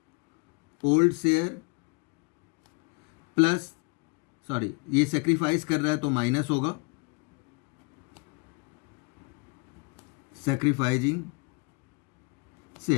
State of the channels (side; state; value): right; quieter; 30.4 dB